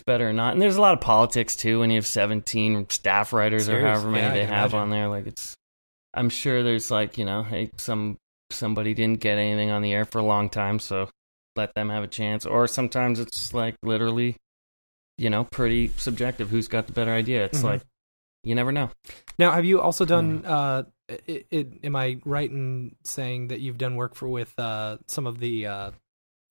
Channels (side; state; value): both; inverted; correlation -1.00